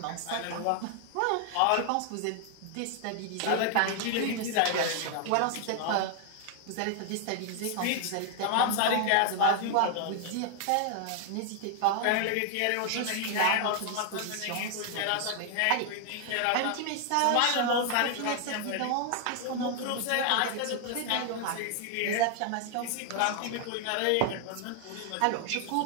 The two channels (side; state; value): both; different; correlation 0.00